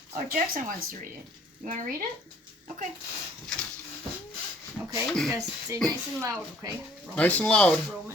Oh, Jackson wants to read it. You want to read it? Okay. Okay, you guys say nice and loud, okay? Romans. Nice and loud.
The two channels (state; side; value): normal; both; correlation 0.58